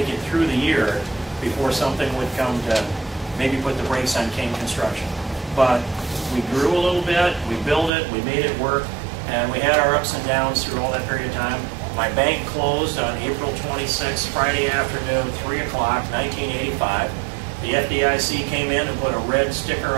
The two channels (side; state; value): left; drops out; at 7.9 s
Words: it through the year before something would come to maybe put the brakes on King Construction. But we grew a little bit, we built it, we made it work, and we had our ups and downs through all that period of time. My bank closed on April 26th, Friday afternoon, 3 o'clock, 1985. The FDIC came in and put a red sticker